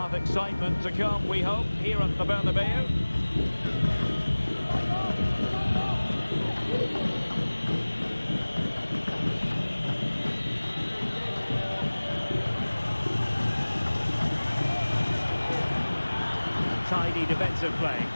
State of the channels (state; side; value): inverted; both; correlation -1.00